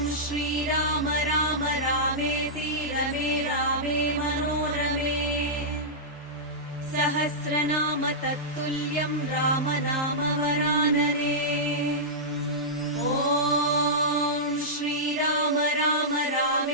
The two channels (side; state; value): both; normal; correlation -0.13